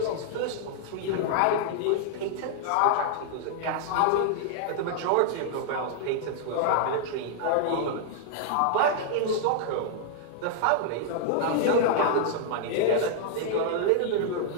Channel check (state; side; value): different; both; correlation -0.01